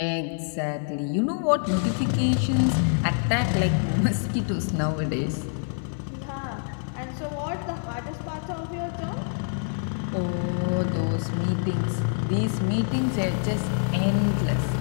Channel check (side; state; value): right; silent; 61 dB below the other